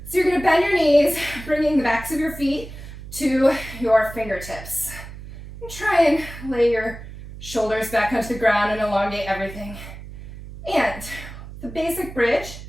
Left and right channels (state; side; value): noise; right; hum, 13 dB below the sound